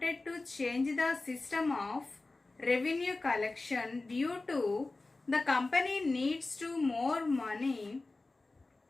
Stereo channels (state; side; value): quieter; right; 3.3 dB